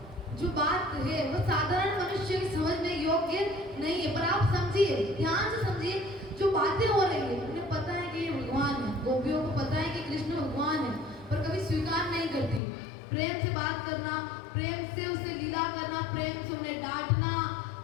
जो बात है वो साधारण मनुष्य की समझने योग्य नहीं है। पर आप समझिए, ध्यान से समझिए, जो बातें हो रही है, उन्हें पता है कि ये भगवान है, गोपियों को पता है कि कृष्ण भगवान है, पर कभी स्वीकार नहीं करती। प्रेम से बात करना, प्रेम से उसे लीला करना, प्रेम से उन्हें डांटना,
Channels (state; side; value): drops out; right; at 12.6 s